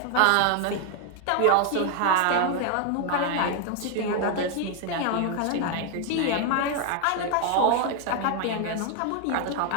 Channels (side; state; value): both; different; correlation 0.01